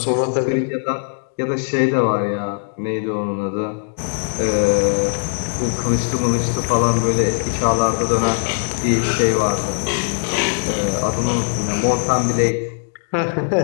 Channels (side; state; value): right; silent; digital silence